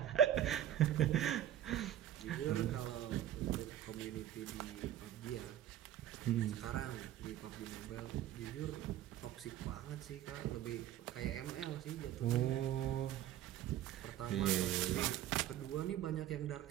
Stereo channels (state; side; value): quieter; left; 11.7 dB